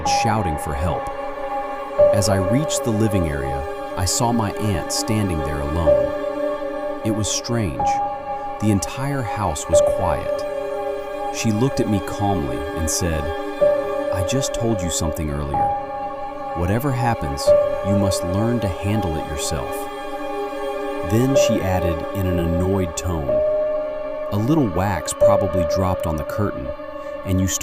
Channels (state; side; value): identical; both; correlation 1.00